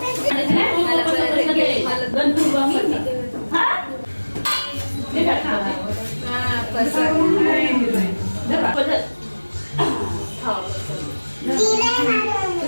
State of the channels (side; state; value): both; inverted; correlation -1.00